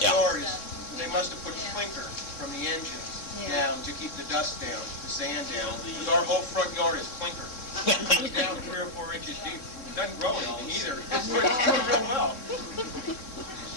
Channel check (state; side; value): late; right; 3.8 ms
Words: Yeah. yard they must have put clinker from the engine down to keep the dust down, the sand down. Because our whole front yard is clinker. It's down 3 or 4 inches deep. It doesn't grow anything either. It's doing real well.